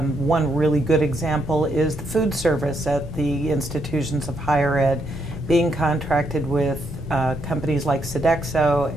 really good example is the food service at the institutions of higher ed being contracted with companies like Sodexo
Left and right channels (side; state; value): both; normal; correlation 0.76